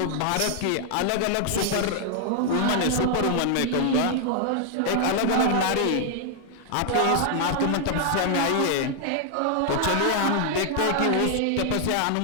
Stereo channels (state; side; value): different; both; correlation 0.00